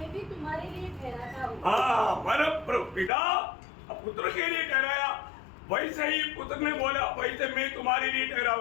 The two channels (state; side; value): drops out; right; at 3.1 s